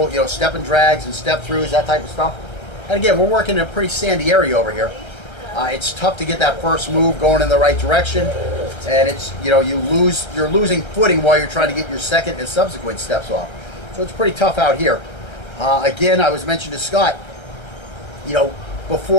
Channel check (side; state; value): right; late; 1.3 ms